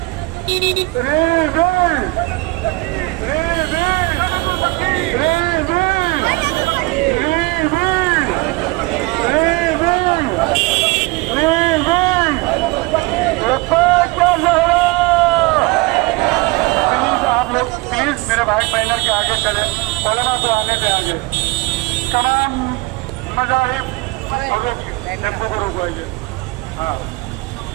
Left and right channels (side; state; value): left; quieter; 23.9 dB